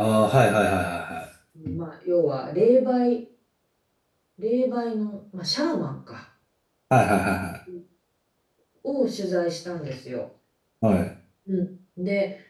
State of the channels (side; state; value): both; identical; correlation 1.00